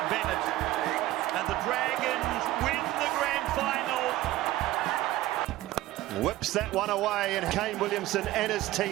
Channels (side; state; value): left; quieter; 16.0 dB